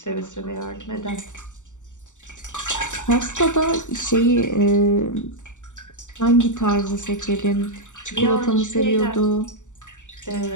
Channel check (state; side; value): late; right; 0.85 ms